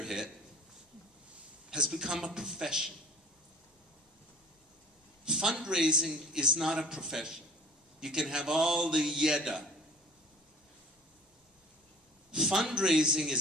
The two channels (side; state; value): both; normal; correlation 0.46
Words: hit, has become a profession. Fundraising is not a profession. You can have all the yeda. Fundraising